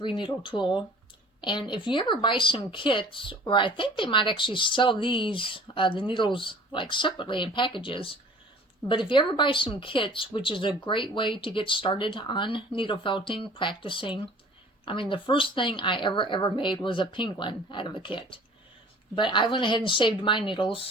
tool, and if you ever buy some kits, or I think they might actually sell these, the needles like separately in packages, but if you ever buy some kits, which is a great way to get started on needle felting, practicing. I mean, the first thing I ever made was a penguin out of a kit. But I went ahead and saved my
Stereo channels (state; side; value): normal; both; correlation 0.48